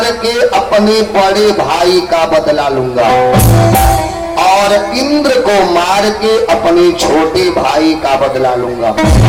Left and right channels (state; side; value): identical; both; correlation 1.00